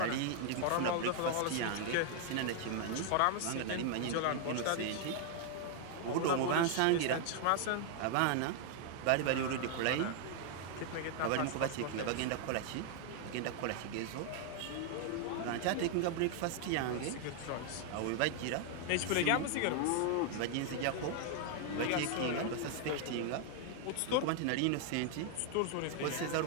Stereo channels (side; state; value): both; different; correlation 0.00